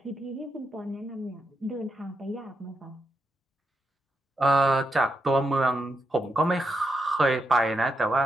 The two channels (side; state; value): both; normal; correlation 0.83